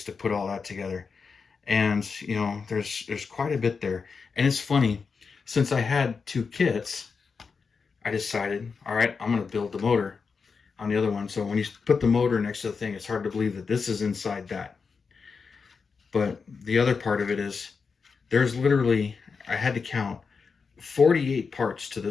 to put all that together. And there's quite a bit there. And it's funny, since I had 2 kits, I decided, all right, I'm going to build the motor on the other one. So when you put the motor next to the thing, it's hard to believe that this is inside that. But the other part of it is, there's literally, I had to count 48 parts to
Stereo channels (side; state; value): right; quieter; 5.2 dB